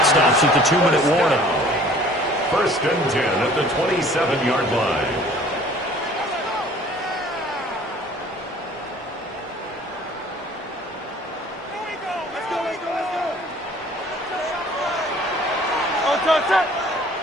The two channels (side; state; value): both; normal; correlation 0.52